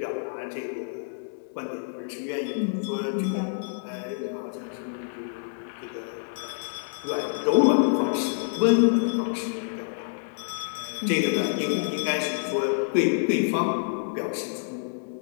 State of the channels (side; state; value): right; silent; digital silence